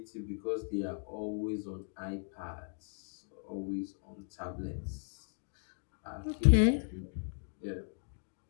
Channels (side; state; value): right; silent; 53 dB below the other